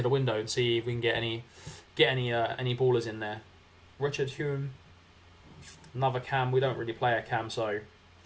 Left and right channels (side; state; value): both; identical; correlation 1.00